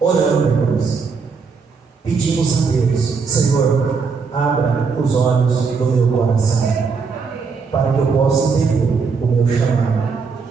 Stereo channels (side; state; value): left; quieter; 5.1 dB